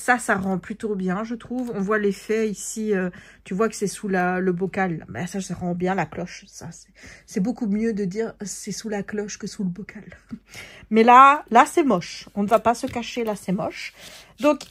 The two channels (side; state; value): both; identical; correlation 1.00